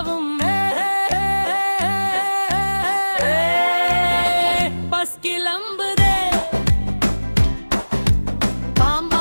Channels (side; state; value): both; inverted; correlation -1.00